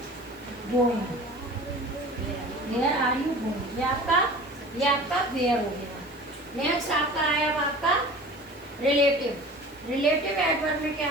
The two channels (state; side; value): noise; right; hiss, 27 dB below the sound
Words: going, where are you going. ये आपका वेयर हो गया. नेक्स्ट आपका है अब आपका रिलेटिव. रिलेटिव एडवर्ब में क्या